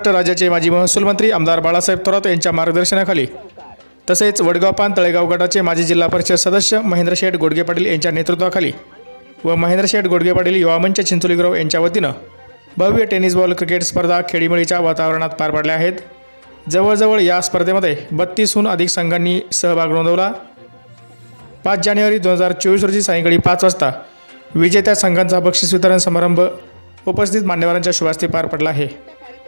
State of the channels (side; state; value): both; inverted; correlation -1.00